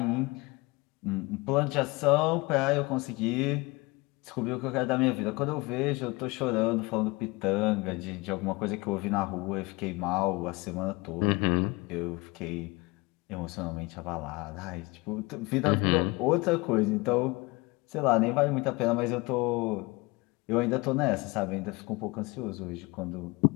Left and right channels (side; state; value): right; quieter; 24.4 dB